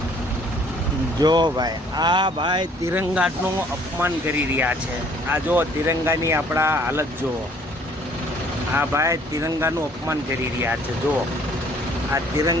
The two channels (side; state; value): both; normal; correlation 0.58